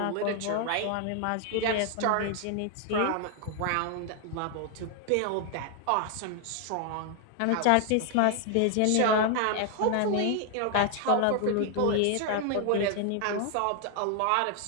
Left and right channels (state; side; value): different; both; correlation 0.00